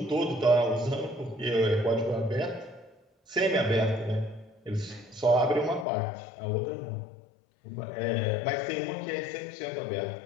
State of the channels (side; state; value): right; drops out; at 5.9 s